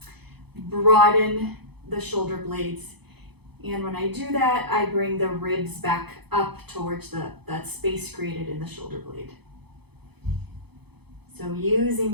broaden the shoulder blades. And when I do that, I bring the ribs back up towards that space created in the shoulder blade. So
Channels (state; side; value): late; left; 0.98 ms